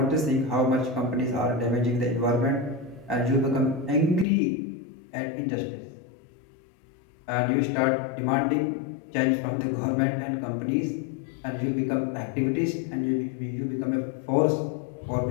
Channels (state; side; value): drops out; right; at 4.2 s